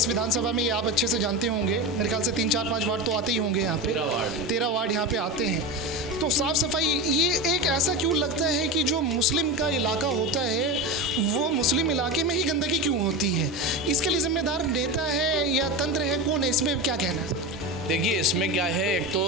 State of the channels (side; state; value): both; normal; correlation 0.22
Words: विधानसभा में, ये आप अच्छे से जानते होंगे, मेरे ख्याल से 3, 4, 5 वार्ड तो आते ही होंगे यहाँ पे, 13 वार्ड यहाँ पे आते हैं। तो साफ़ सफाई ये एक ऐसा क्यों लगता है कि जो मुस्लिम का इलाका होता है वो मुस्लिम इलाके में ही गंदगी क्यों होती है? इसके लिए जिम्मेदार नेता है या तंत्र है, कौन है? इसमें क्या कहना है? देखिए इसमें क्या है, एक